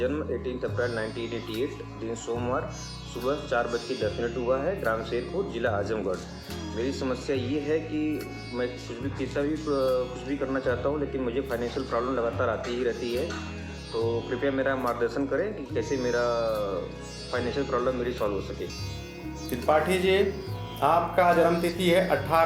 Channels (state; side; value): identical; both; correlation 1.00